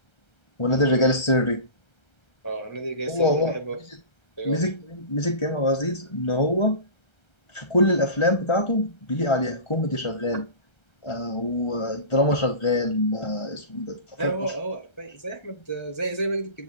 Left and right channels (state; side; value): late; right; 1.3 ms